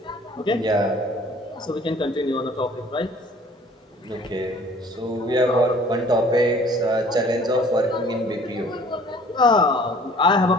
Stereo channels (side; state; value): both; normal; correlation 0.52